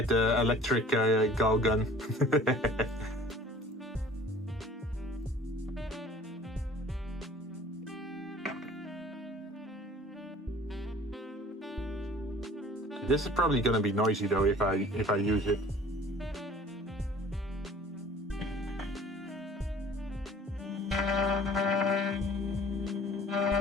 the electric gal gun? This is probably gonna be noisy though if I use it.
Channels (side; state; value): both; normal; correlation 0.49